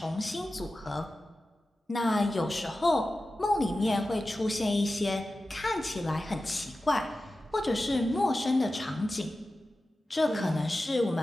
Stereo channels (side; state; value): both; normal; correlation 0.94